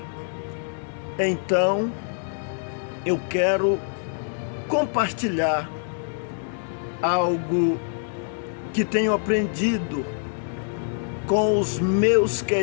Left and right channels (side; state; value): right; silent; digital silence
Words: Então, eu quero compartilhar algo que tenho aprendido com os meus